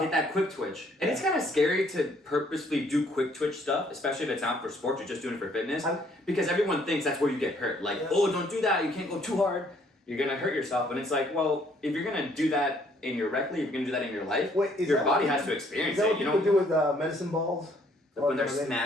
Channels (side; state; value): both; normal; correlation 0.64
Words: Hit that quick twitch. And it's kind of scary to purposely do quick twitch stuff, especially if it's not for sports, you're just doing it for fitness. Because everyone thinks that's where you get hurt. Like, oh, don't do that, you can't go too hard. You're going to hurt yourself. And it's like, well, if you're going to do that in your rec league, if you're going to do that in your life, Wait, is your that body what- has to experience Is that it. what You people know, do with medicine balls? when they're Or they-